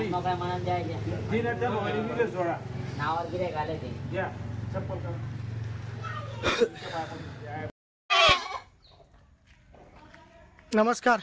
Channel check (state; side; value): identical; both; correlation 1.00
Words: काय म्हणून द्यायचे तीन त्या मोबाईल दिले सोडा नावावर गिरे घाले ते द्या चप्पल कर. नमस्कार.